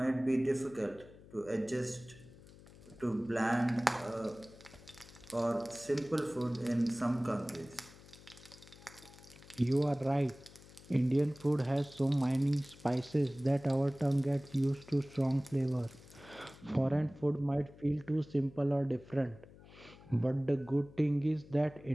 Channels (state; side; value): noise; left; hum, 21 dB below the sound